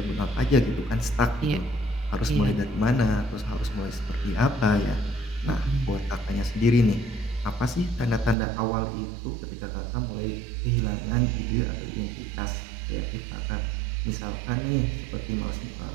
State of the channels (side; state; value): left; drops out; at 8.3 s